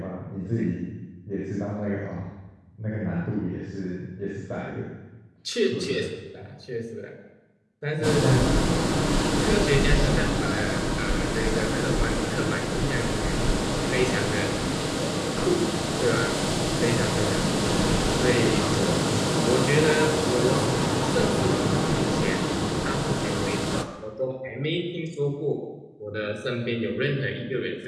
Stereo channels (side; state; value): both; identical; correlation 1.00